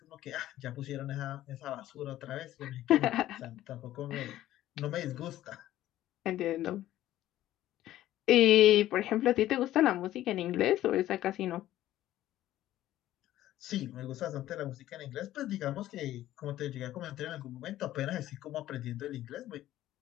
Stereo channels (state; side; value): quieter; right; 13.9 dB